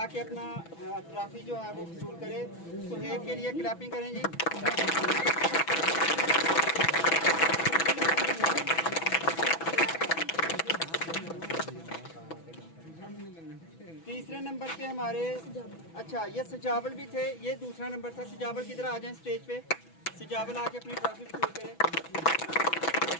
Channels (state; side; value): late; right; 6.1 ms